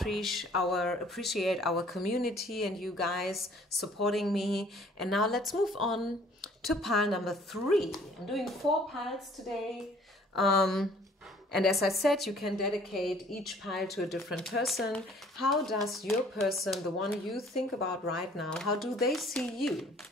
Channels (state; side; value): normal; both; correlation 0.56